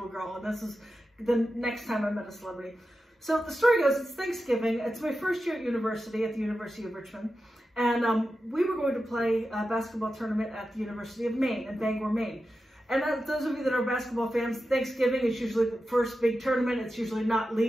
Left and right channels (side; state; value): both; normal; correlation 0.91